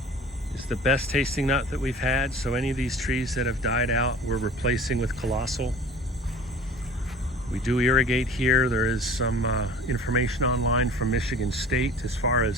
is the best tasting nut that we've had. So any of these trees that have died out, we're replacing with Colossal. We do irrigate here. There is some information online from Michigan State as far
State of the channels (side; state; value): both; normal; correlation 0.44